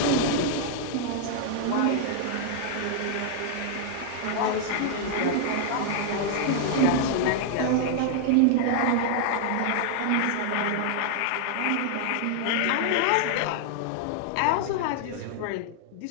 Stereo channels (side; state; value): both; different; correlation -0.01